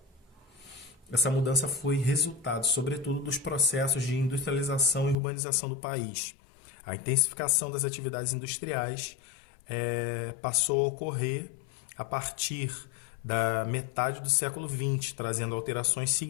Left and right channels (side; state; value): right; drops out; at 5.2 s